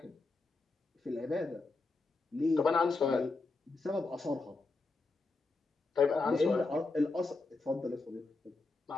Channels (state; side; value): quieter; right; 3.5 dB